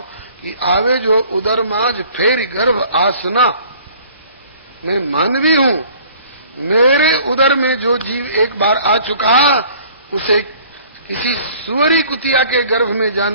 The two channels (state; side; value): inverted; both; correlation -0.53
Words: कि आवे जो उदर माज फेर गर्भ आसना। मैं मानवी हूं, मेरे उदर में जो जीव एक बार आ चुका उसे किसी सुअरी कुतिया के गर्भ में